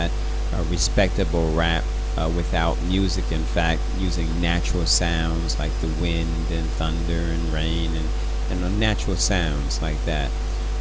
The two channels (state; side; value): identical; both; correlation 1.00